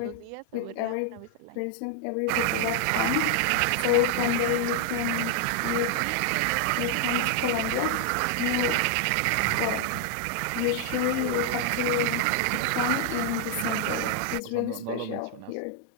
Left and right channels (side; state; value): both; different; correlation 0.00